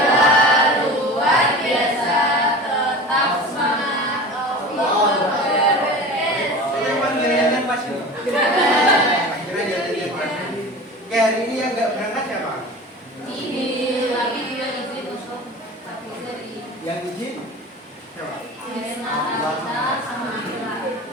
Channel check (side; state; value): both; normal; correlation 0.35